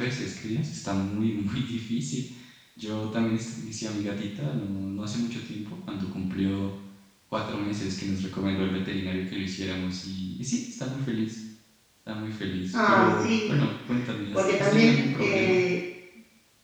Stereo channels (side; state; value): both; identical; correlation 1.00